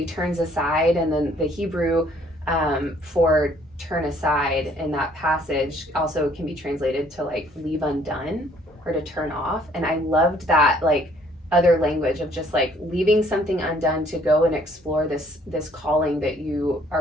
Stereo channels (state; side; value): normal; both; correlation 0.61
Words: turns aside, and then the Hebrew for turn aside in that passage also can be translated to like leave undone or to turn off. And I loved that like other language of just like leaving something undone to go and explore this calling that you